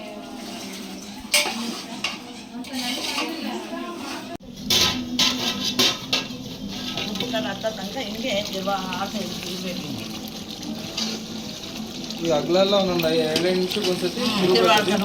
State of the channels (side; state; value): both; identical; correlation 1.00